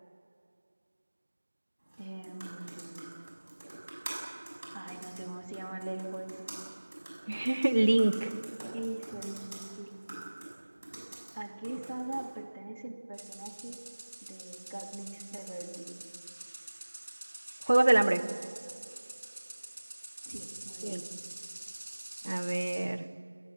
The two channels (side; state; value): both; inverted; correlation -1.00